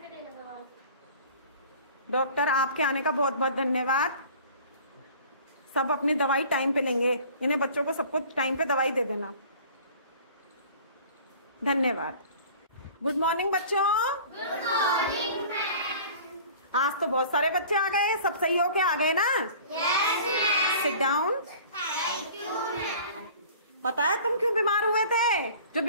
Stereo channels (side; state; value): both; inverted; correlation -0.46